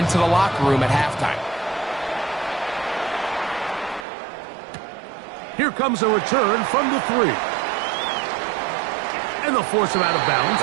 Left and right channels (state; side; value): drops out; left; at 4.0 s